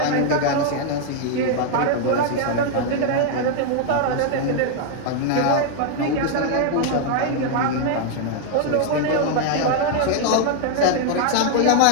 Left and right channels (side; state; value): both; different; correlation 0.00